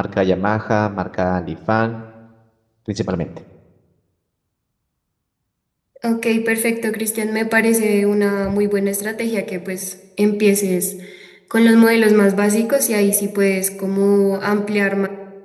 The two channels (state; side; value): identical; both; correlation 1.00